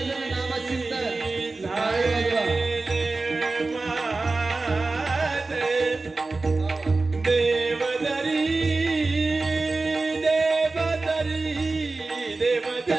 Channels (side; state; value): left; quieter; 3.5 dB